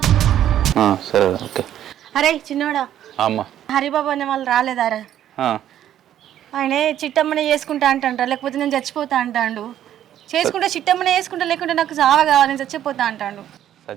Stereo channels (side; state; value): left; quieter; 11.3 dB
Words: సరే ఓకే. అరే చిన్నోడా, అమ్మ హరిబాబు అనే వాళ్ళు రాలేదారా? ఆయనే చిట్టమ్మనే చేసుకుంటా అంటాండ్రా, లేకపోతే నేను చచ్చిపోతా అంటాండు. చేసుకుంటే చిట్టమ్మనే చేసుకుంటా, లేకుంటే నాకు చావ కావాలి, నేను చచ్చిపోతా అంటాండు.